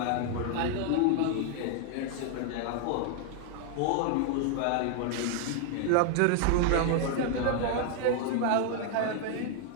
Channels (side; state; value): both; different; correlation 0.00